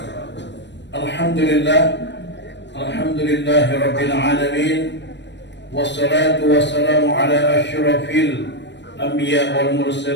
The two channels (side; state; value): right; late; 0.52 ms